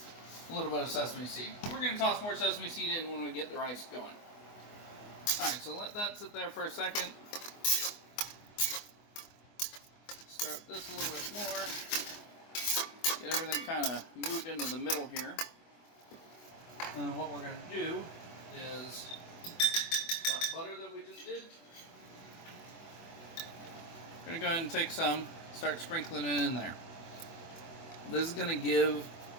a little bit of sesame seed. We're going to toss more sesame seed in when we get the rice going. Alright, so let that sit there for a second. Stir up this a little bit more. Get everything kind of moved into the middle here. And what we're going to do is that butter that we just did. We're going to go ahead and take some, start sprinkling it in there. This is going to give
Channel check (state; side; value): late; right; 24 ms